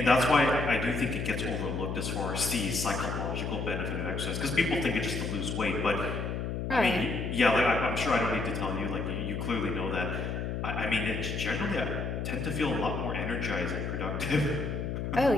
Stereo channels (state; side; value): noise; left; hum, 3 dB below the sound